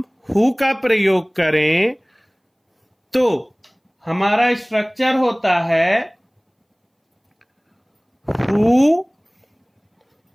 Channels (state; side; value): identical; both; correlation 1.00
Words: हु का प्रयोग करें तो हमारा स्ट्रक्चर होता है हु